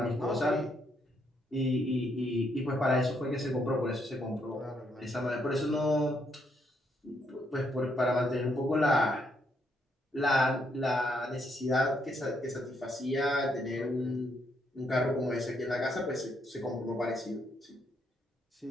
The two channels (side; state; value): both; normal; correlation 0.75